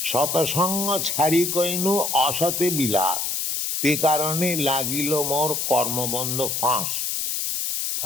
Satasanga chhari koinu asate bilas, te karane lagilo mor karmabandha phas.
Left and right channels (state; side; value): noise; left; hiss, 1 dB below the sound